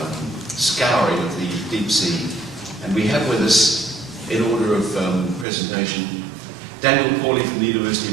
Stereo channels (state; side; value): drops out; left; at 5.5 s